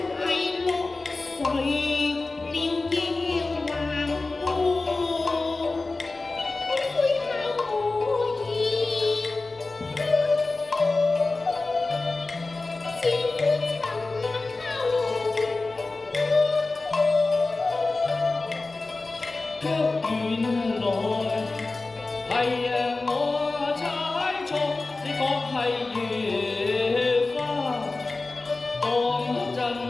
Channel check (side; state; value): right; quieter; 3.4 dB